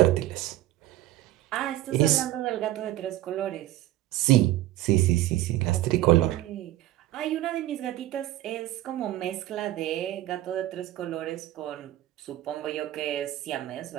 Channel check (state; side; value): quieter; left; 15.0 dB